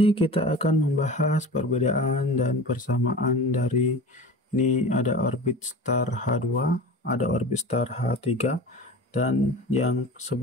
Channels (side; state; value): both; normal; correlation 0.35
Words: kita akan membahas perbedaan dan persamaan dari ini ada orbit star H2, ada orbit star H3, dan yang